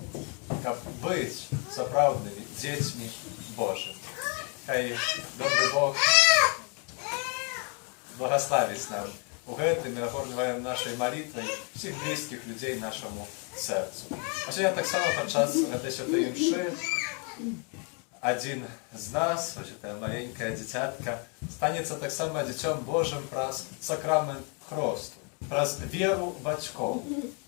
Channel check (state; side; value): quieter; right; 36.6 dB